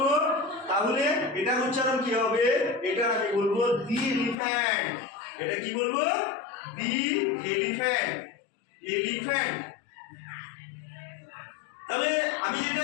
তাহলে এটার উচ্চারণ কি হবে? এটার আমি বলবো দি এলিফ্যান্ট। এটা কি বলবো? দি এলিফ্যান্ট, এলিফ্যান্ট। তাহলে আমি যেটা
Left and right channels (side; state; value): right; drops out; at 4.4 s